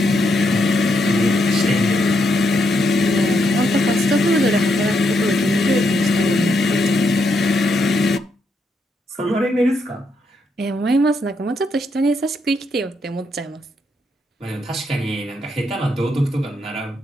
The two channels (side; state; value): both; normal; correlation 0.79